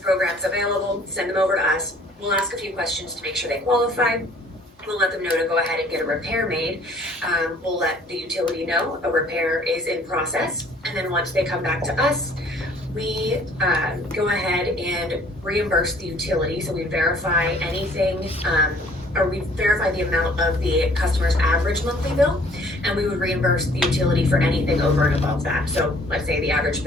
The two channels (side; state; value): both; normal; correlation 0.56